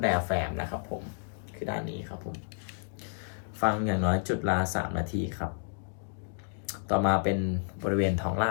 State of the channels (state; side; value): silent; right; digital silence